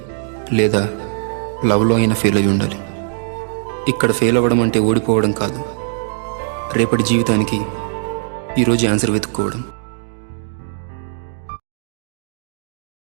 లేదా లవ్లో అయినా ఫెయిల్ అయి ఉండాలి. ఇక్కడ ఫెయిల్ అవ్వడం అంటే ఓడిపోవడం కాదు, రేపటి జీవితానికి ఈరోజు ఆన్సర్ వెతుక్కోవడం.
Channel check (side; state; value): left; silent; digital silence